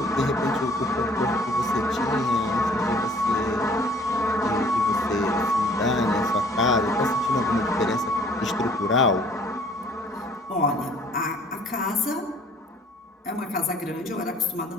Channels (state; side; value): normal; both; correlation 0.55